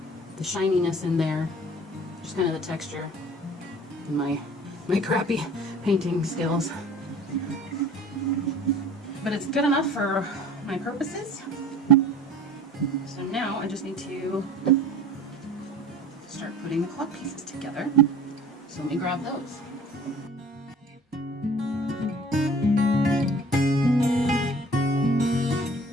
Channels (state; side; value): normal; both; correlation 0.45